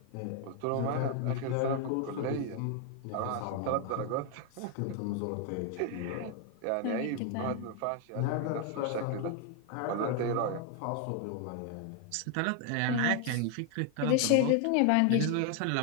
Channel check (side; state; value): both; different; correlation 0.00